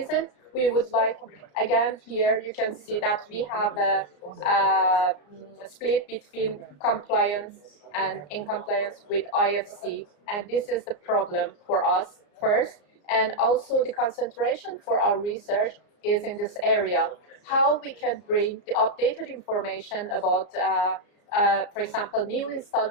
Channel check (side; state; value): right; late; 34 ms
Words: we would like, again, here you can see that we have a split between compliance and in compliance with IFC. And this is the problem for us first. And also the concentration for our research is in this area. How we can bring the updated information about, for example, new